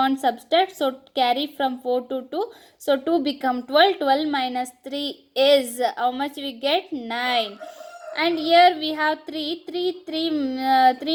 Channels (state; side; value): identical; both; correlation 1.00